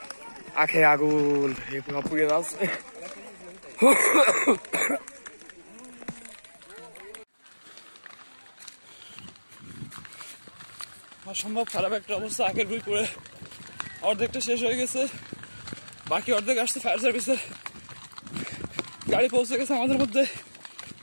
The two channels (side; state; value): both; inverted; correlation -1.00